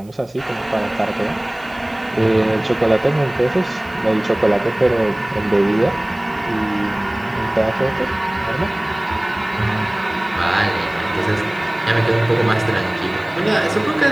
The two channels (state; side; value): noise; right; hiss, 29 dB below the sound